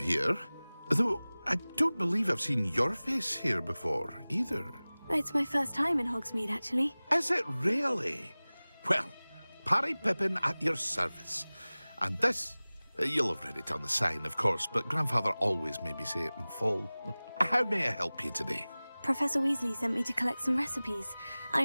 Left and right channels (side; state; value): both; inverted; correlation -0.99